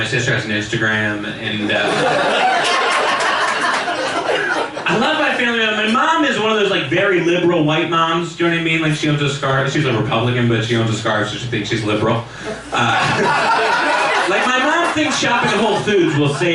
sister has an Instagram, and I love my family. My mom is one of those like very liberal white moms. Do you know what I mean? Like she owns a scarf. She's a Republican, but she owns a scarf, so she thinks she's liberal. Like my mom thinks shopping at Whole Foods will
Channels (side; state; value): both; identical; correlation 1.00